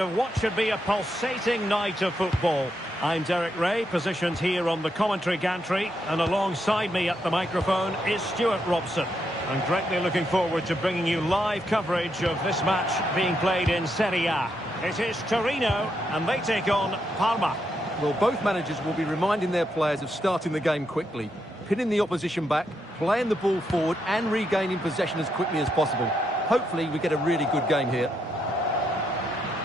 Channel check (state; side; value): normal; both; correlation 0.80